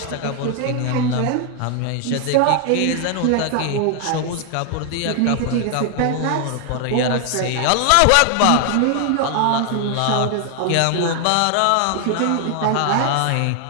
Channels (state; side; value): different; both; correlation 0.00